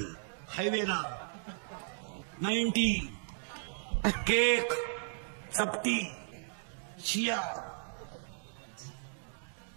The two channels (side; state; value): left; silent; digital silence